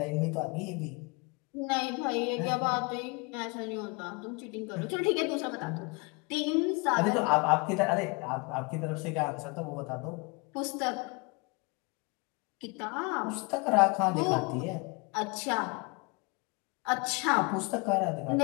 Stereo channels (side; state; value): right; quieter; 29.7 dB